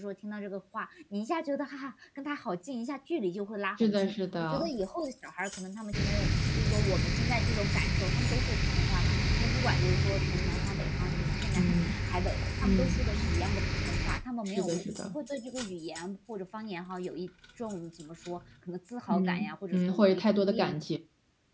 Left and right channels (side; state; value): both; identical; correlation 1.00